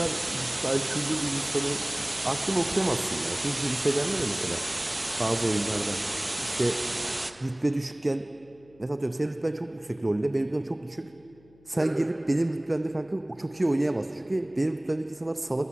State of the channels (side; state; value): left; noise; hum, 28 dB below the sound